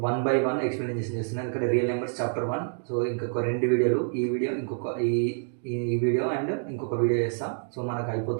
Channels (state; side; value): silent; left; 60 dB below the other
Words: 1 by 1 explanation చేస్తున్నాను ఇక్కడ real numbers chapter 1 so ఇంకొక రెండు వీడియోలు ఈ video ఇంకొక ఈ video and ఇంకొక video చేస్తాం సో మనకు